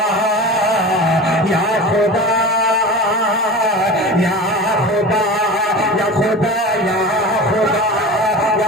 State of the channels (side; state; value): both; normal; correlation 0.32